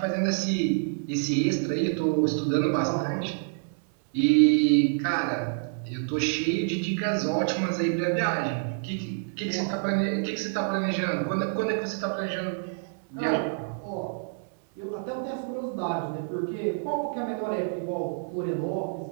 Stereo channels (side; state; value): left; silent; 60 dB below the other